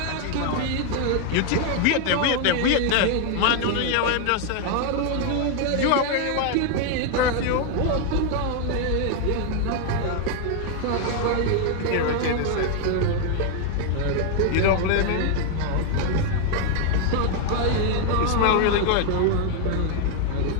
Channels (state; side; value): different; both; correlation 0.00